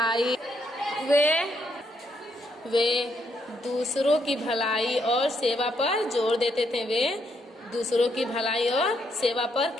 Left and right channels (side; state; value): both; normal; correlation 0.75